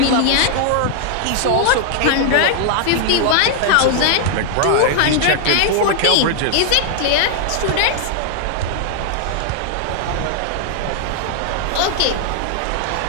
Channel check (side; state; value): both; different; correlation 0.00